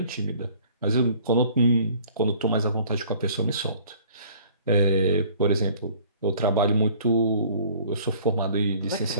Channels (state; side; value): inverted; both; correlation -0.53